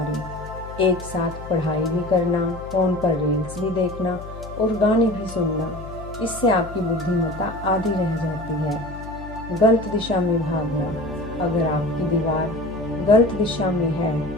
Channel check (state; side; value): noise; left; hum, 13 dB below the sound